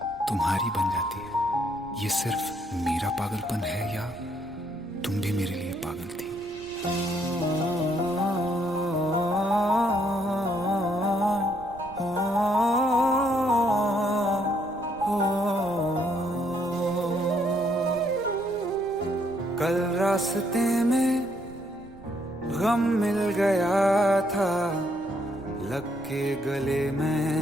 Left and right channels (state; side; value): noise; right; rumble, 22 dB below the sound